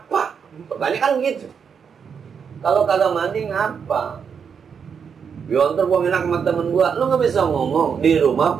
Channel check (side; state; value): left; quieter; 6.8 dB